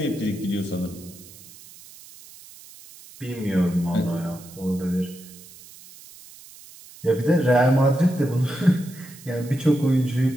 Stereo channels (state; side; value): noise; right; hiss, 20 dB below the sound